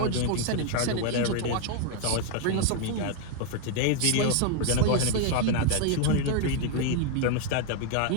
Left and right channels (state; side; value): different; both; correlation 0.00